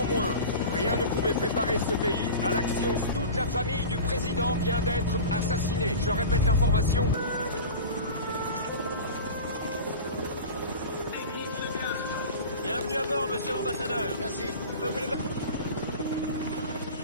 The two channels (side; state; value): both; inverted; correlation -0.33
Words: rien ne pouvait préparer ce pays à l'action. Toute la famille du président vient d'être assassinée. Je répète l'information. Bienvenue à bord, monsieur l'ambassadeur. Merci.